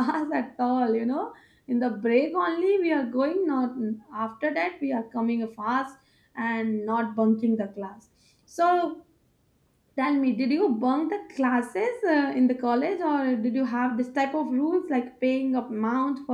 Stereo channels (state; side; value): identical; both; correlation 1.00